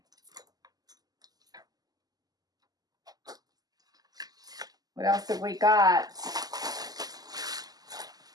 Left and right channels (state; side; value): late; left; 0.18 ms